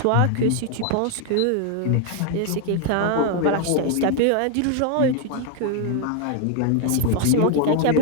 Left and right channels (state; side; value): different; both; correlation 0.00